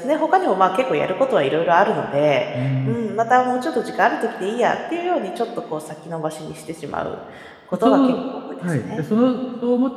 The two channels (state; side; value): identical; both; correlation 1.00